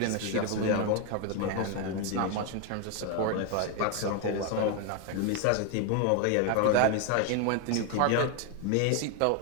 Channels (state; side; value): different; both; correlation 0.01